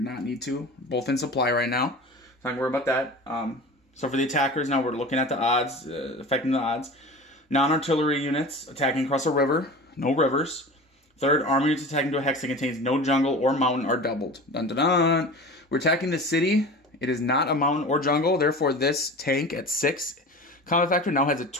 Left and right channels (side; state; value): both; normal; correlation 0.35